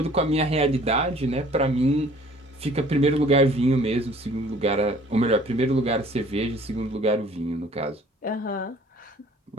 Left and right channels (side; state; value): both; normal; correlation 0.54